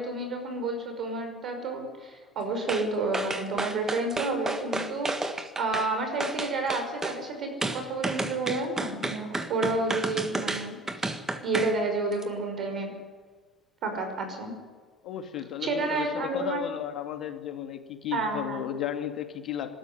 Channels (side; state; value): both; normal; correlation 0.43